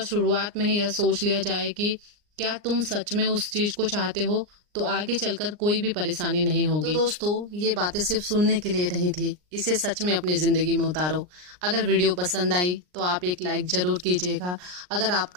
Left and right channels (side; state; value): left; late; 39 ms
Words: शुरुआत में ही यह सोच लिया जाए कि क्या तुम सच में उस चीज को चाहते हो तो आगे चलकर कोई भी परेशानी नहीं होगी। तो दोस्तों, ये बातें सिर्फ सुनने के लिए नहीं थी, इसे सच में अपनी जिंदगी में उतारो। अगर वीडियो पसंद आई तो आप एक लाइक जरूर कीजिएगा। अगर